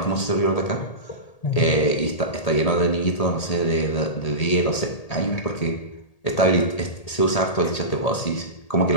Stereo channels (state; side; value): late; right; 1.8 ms